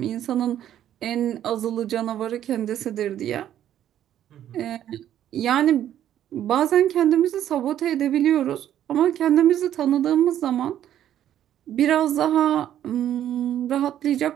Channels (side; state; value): left; quieter; 11.1 dB